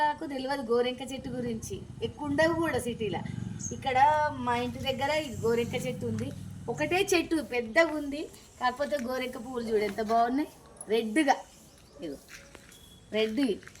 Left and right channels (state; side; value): identical; both; correlation 1.00